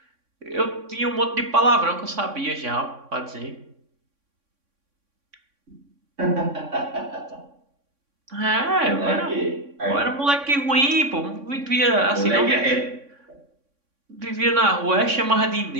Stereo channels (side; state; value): left; late; 3.6 ms